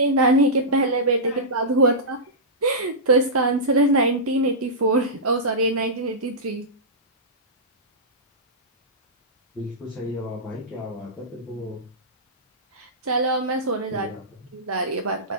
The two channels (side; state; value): both; normal; correlation -0.15